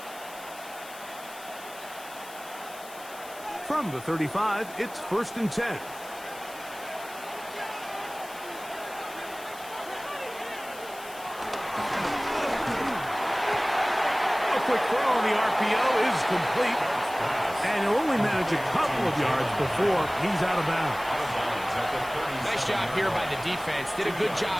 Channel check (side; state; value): left; noise; hiss, 17 dB below the sound